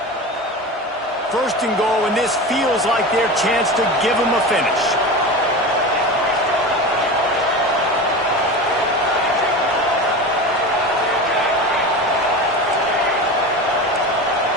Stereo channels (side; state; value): both; normal; correlation 0.28